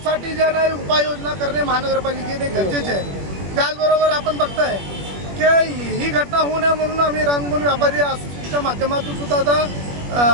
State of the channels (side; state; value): left; late; 21 ms